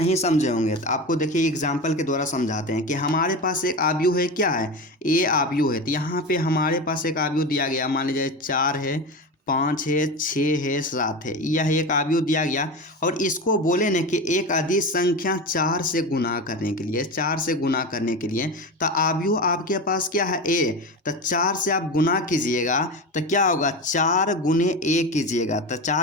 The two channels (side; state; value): both; normal; correlation 0.24